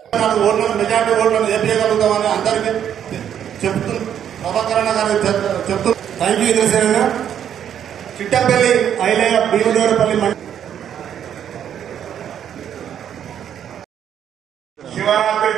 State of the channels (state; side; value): quieter; left; 9.4 dB